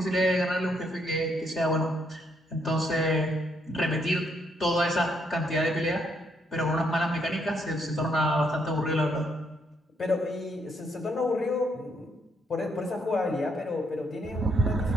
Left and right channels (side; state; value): both; normal; correlation 0.73